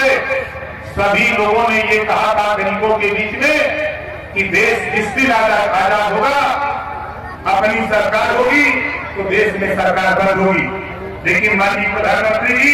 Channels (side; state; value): both; identical; correlation 1.00